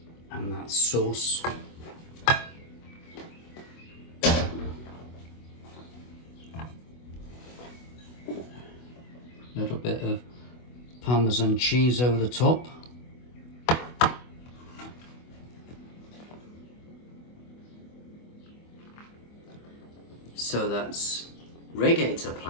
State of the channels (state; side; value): late; right; 24 ms